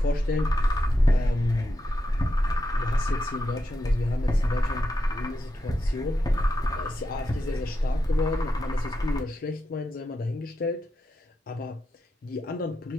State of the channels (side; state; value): both; normal; correlation 0.86